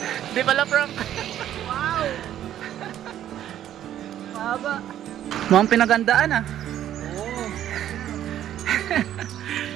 Di pala prank. Wow. Mahaba. Mukhang pinagandaan ah. Oo.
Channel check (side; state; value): left; quieter; 11.4 dB